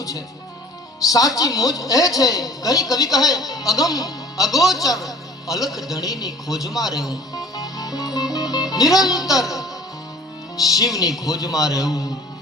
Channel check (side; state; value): both; normal; correlation 0.49